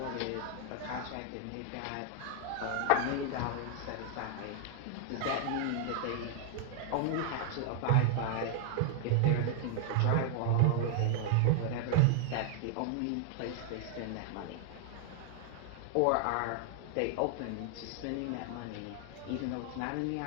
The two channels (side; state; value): both; different; correlation 0.00